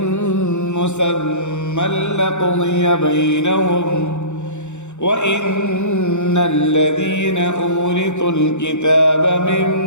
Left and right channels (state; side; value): late; right; 0.83 ms